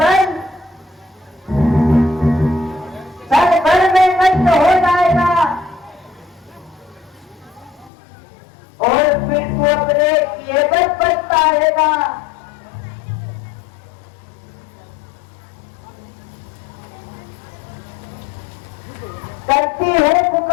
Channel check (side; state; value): right; drops out; at 7.9 s